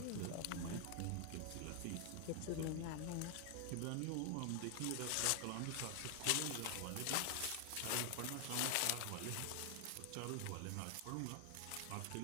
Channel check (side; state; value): both; different; correlation 0.00